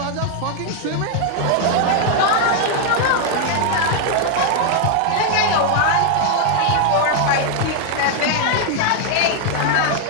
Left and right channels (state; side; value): different; both; correlation 0.00